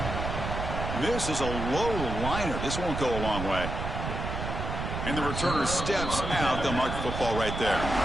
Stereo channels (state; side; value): noise; right; rumble, 4 dB below the sound